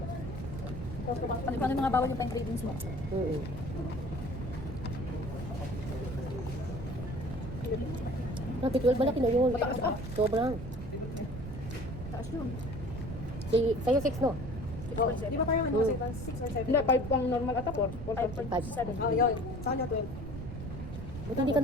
Paano yung mga bawal yung time cravings mo? Grabe, 12 malaki na yun. Sobrang. Taas yun. Sa'yo 6, no? Di ba parang ano kasi 6 or 7? Hindi, 5 ang normal ata, 4. 5.7. Oh, yun. Sa kanya 12. Buti hindi ka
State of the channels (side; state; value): right; noise; rumble, 8 dB below the sound